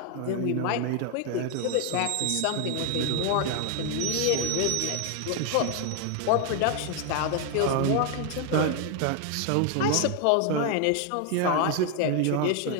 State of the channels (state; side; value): different; both; correlation 0.01